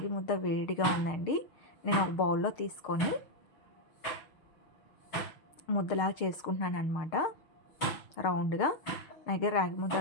ముద్ద వేడిగా ఉందండి. నేను ఒక బౌల్లో తీసుకొని ముద్దలాగా చేసుకుంటున్నాను అనమాట, రౌండ్గా. నా దగ్గర రాగి ముద్ద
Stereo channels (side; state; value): right; late; 6.5 ms